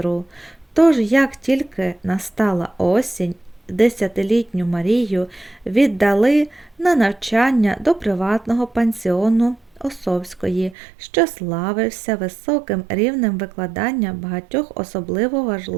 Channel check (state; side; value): drops out; left; at 10.8 s